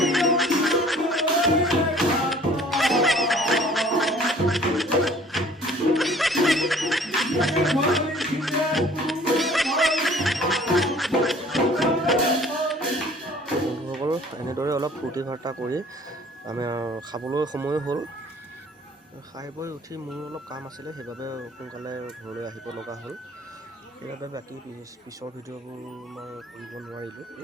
বন্ধুসকল এনেদৰে অলপ ফূৰ্তি ফাৰ্তা কৰি আমি খাবলৈ সময় হ'ল। খাই বৈ উঠি মোৰ অলপ কাম আছিলে, সেইবাবে সোনকালে ঘৰলৈ আহিব লগা হ'ল। সেইবাবে বাকী পিছৰ ভিডিঅ'বোৰ মই কৰিব নোৱাৰিলোঁ।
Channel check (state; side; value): normal; both; correlation 0.52